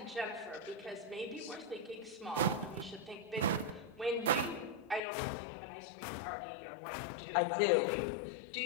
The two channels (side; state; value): right; drops out; at 5.0 s